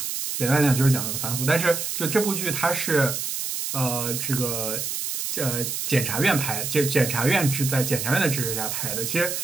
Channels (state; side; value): noise; right; hiss, 3 dB below the sound